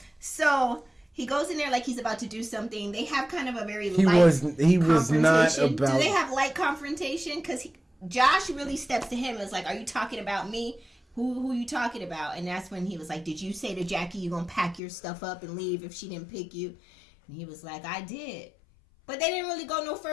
So he goes in there like he's about to do something. They have kind of a very light confrontation. He was not about. Do they have light confrontation? Because Josh really steps to him and is like, "Are you talking about me? Who you talking about?" And that's when he was like, "Did you say to Jackie you gonna pack your stuff up and leave if she didn't pick you?" And he was like, "I did." But they didn't really go no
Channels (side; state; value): right; drops out; at 14.8 s